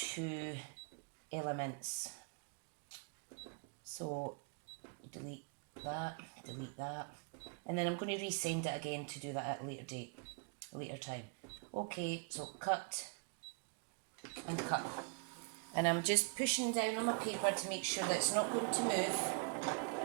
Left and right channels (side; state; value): left; quieter; 35.7 dB